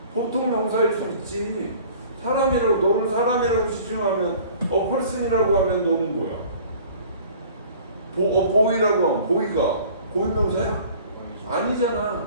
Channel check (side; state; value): both; inverted; correlation -0.48